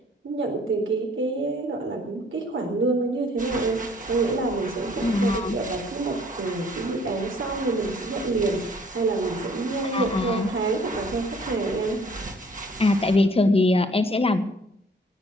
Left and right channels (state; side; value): normal; both; correlation 0.58